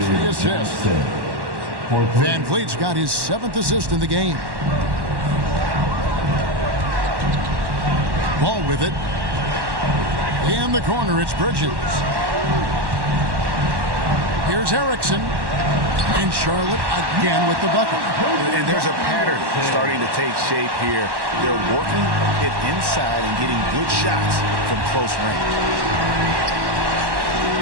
the assist. Van Vliet's got his 7th assist in the game. Ball with it. In the corner, it's Bridges. Here's Erickson. And Charlotte again with the bucket. And there's a pattern starting to take shape here. They're working it inside and getting good shots from close range.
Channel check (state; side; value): late; left; 1.1 ms